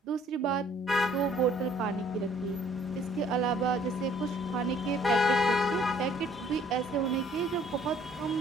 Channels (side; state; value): both; normal; correlation 0.58